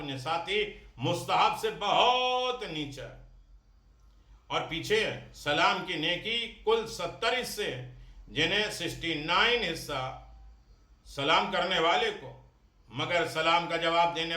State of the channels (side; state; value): both; identical; correlation 1.00